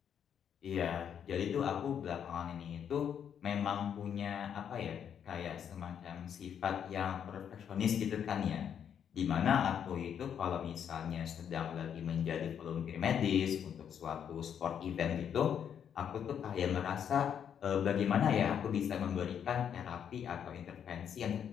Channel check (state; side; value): quieter; right; 8.5 dB